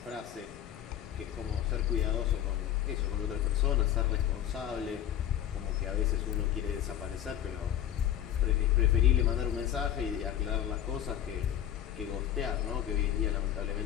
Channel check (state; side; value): quieter; right; 11.0 dB